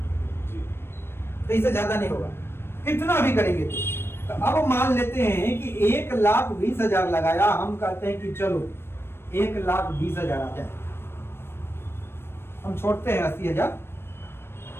तो इससे ज्यादा नहीं होगा कितना भी करेंगे तो अब मान लेते हैं कि 1,20,000 लगाया, हम कहते हैं कि चलो 1,20,000 आ जाए, हम छोड़ते हैं 80,000,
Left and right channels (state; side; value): late; right; 0.12 ms